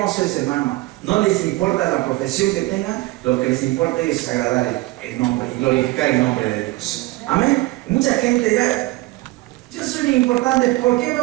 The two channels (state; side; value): quieter; left; 20.0 dB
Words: es, hermano. No les importa la profesión que tengan, lo que les importa es agradar el nombre y glorificar el nombre de Dios. Amén. Mucha gente dirá, yo soy muy importante, ¿por qué